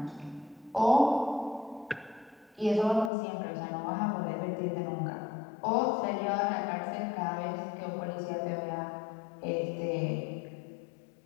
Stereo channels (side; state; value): right; drops out; at 3.1 s